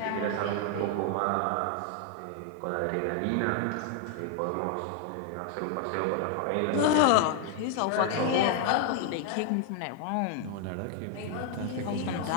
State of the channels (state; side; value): different; both; correlation 0.00